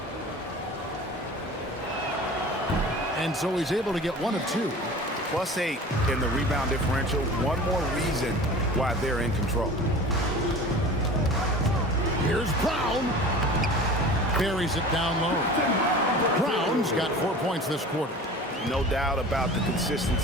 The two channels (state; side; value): normal; both; correlation 0.39